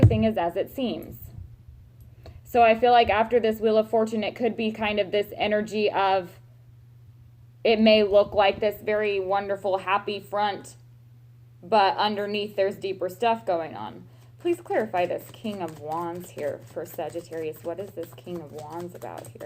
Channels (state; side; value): identical; both; correlation 1.00